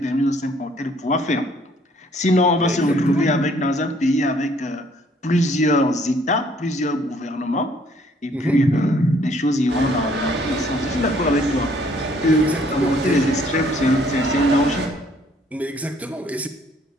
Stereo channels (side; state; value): both; normal; correlation 0.62